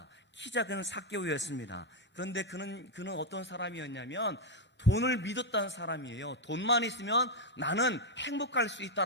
키 작은 삭개오였습니다. 그런데 그는 어떤 사람이었냐면 돈을 믿었다는 사람이에요. 돈만 있으면 나는 행복할 수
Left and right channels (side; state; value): both; normal; correlation 0.01